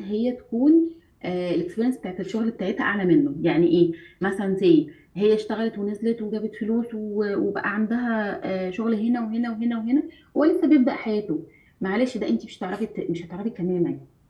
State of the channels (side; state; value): both; identical; correlation 1.00